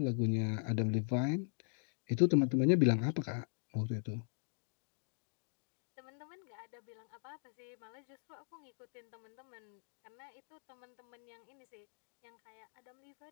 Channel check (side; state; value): right; silent; digital silence